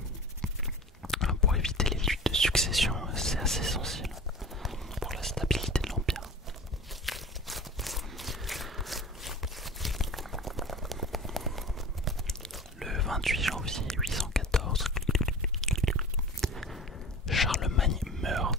Pour éviter les luttes de succession, c'est assez essentiel pour la stabilité de l'Empire. Le 28 janvier 814, Charlemagne meurt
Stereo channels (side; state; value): both; normal; correlation 0.37